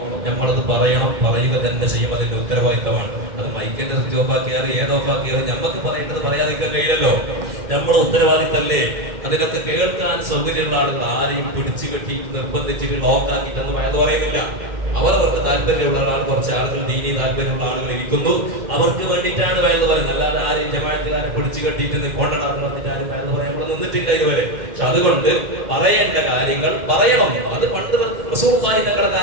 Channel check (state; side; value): late; left; 2.1 ms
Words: പറയണം, പറയുക തന്നെ ചെയ്യും. അതിന്റെ ഉത്തരവാദിത്തമാണ്. അത് മൈക്കിന്റെ സ്വിച്ച് ഓഫാക്കിയാലും ഏതോഫാക്കിയാലും നമുക്ക് പറയേണ്ടത് പറയാതിരിക്കാൻ കഴിയില്ലല്ലോ. നമ്മൾ ഉത്തരവാദിത്തല്ലേ. അതിനൊക്കെ കേൾക്കാൻ സൗകര്യമുള്ള ആളുകൾ ആരെയും പിടിച്ചു കെട്ടി നിർബന്ധിച്ചിട്ട് ലോക്കാക്കിയിട്ടൊന്നും വയത് പറയുന്നില്ല. അവർക്ക് താല്പര്യമുള്ള ആൾ, കുറച്ച് ആളുകൾ ദീനി താല്പര്യമുള്ള ആളുകൾ ഇരിക്കുന്നു, അവർക്ക് വേണ്ടിയിട്ടാണ് വയത് പറയുന്നത്. അല്ലാതെ ആരെയും ജമാഅത്തുകാരെ പിടിച്ചു കെട്ടിയിട്ട് കൊണ്ടാണെന്ന് പറഞ്ഞിട്ട് ആരും വയത് പറയാൻ ഇവിടെ നിന്നിട്ടില്ല ഇതുവരെ. പക്ഷെ അതുകൊണ്ട് പറയേണ്ട കാര്യങ്ങൾ പറയണം. അത് പണ്ട് റസൂലുള്ളാഹി തങ്ങളുടെ